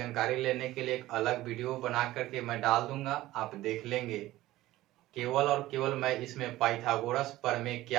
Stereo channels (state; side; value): quieter; left; 16.4 dB